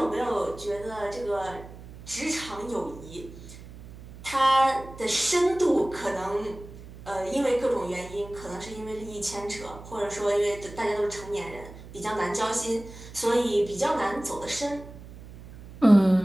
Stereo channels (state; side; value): noise; right; hum, 16 dB below the sound